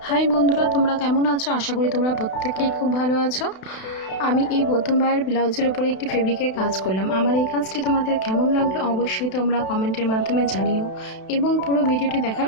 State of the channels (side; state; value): right; late; 32 ms